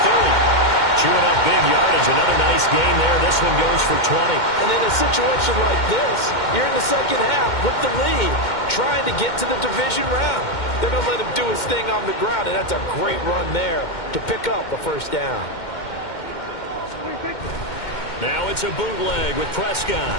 Chewing up big yardage. Another nice gain there. This one goes for 20. And in a situation like this, you're in the second half with the lead, trying to get to the division round. They're going to let him do his thing on the ground, and that's a great run there to pick up a first down. Now it's a bootleg with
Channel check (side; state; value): right; late; 2.1 ms